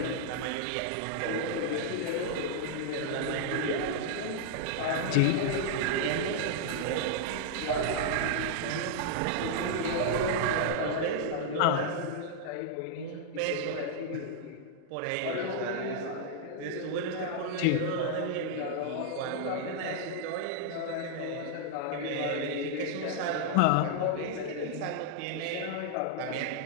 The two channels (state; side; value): different; both; correlation -0.01